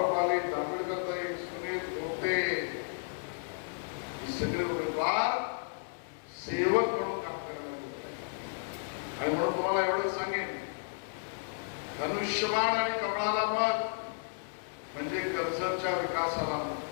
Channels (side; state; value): right; silent; digital silence